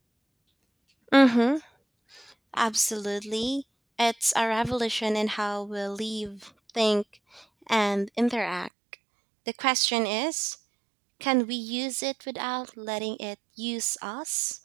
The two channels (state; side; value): drops out; left; at 8.7 s